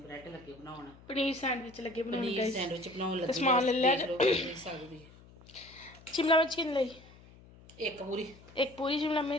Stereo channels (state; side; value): noise; left; hum, 22 dB below the sound